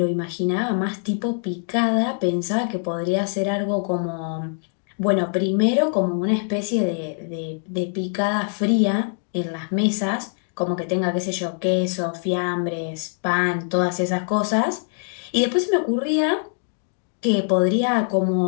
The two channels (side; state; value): right; silent; 56 dB below the other